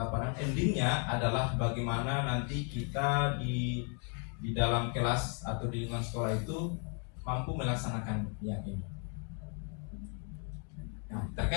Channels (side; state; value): right; quieter; 39.7 dB